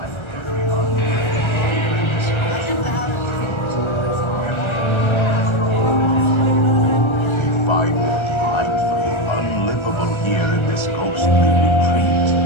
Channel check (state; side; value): late; right; 1.4 ms